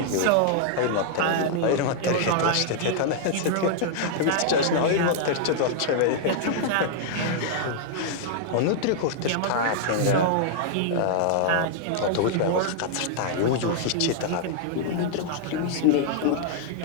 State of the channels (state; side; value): different; both; correlation -0.01